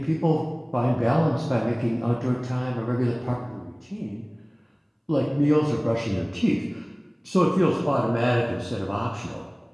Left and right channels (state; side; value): identical; both; correlation 1.00